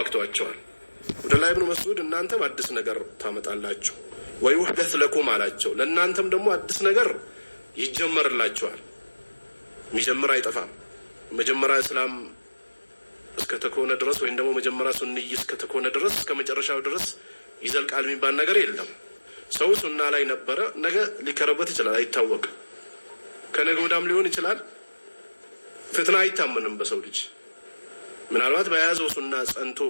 አብዱላህ ኢብኑ መስዑድ እናንተም አዲስ ነገር ታመጣላችሁ ወይ ወህደት ለኩም አላቸው። ለእናንተም ደግሞ አዲስ ነገር ይጀመርላችኋል። የሚጀምር አይጠፋም። መጀመሪያ እስላም እስከ ተኮነ ድረስ ወይም ደግሞ መጀመሪያ ሱንይ እስከ ተኮነ ድረስ እስከ መጨረሻው ድረስ ይዘልቃል የሚባል ነገር የለም። ሰው ሱና ላይ ነበረ፣ ነገ ሊከረበት ይችላል፣ አይታወቅም። ከነገ ወዳም ሊሆን ይችላል። ፍትና አይታመንም በሰው ልጅ። ምናልባት በያዘው ሱና ጸንቶ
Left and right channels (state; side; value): inverted; both; correlation -1.00